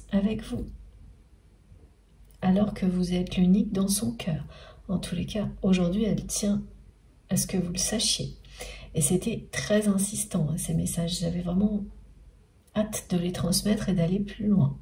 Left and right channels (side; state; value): both; identical; correlation 1.00